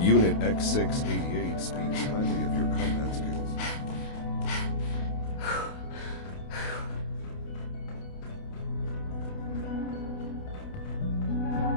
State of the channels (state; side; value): late; right; 28 ms